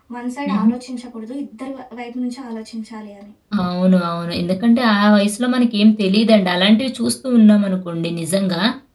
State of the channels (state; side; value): identical; both; correlation 1.00